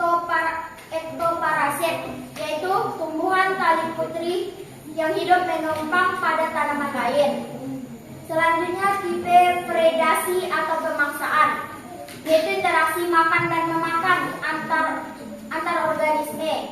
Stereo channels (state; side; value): identical; both; correlation 1.00